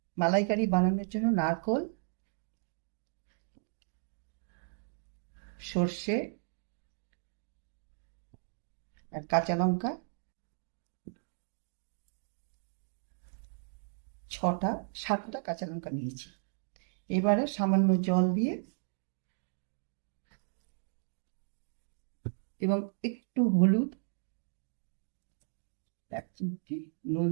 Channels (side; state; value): left; silent; digital silence